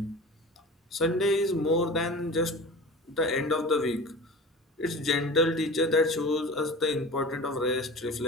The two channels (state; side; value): normal; both; correlation 0.36